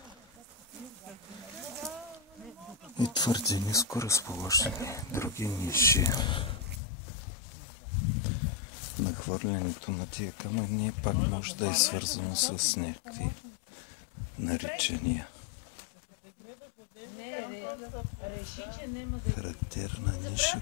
И твърде ниско разположени други ниши. Нахвърлянето на тия камъни пак може да е свързано с някакви наричания. Характерна ниша,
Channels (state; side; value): drops out; right; at 6.8 s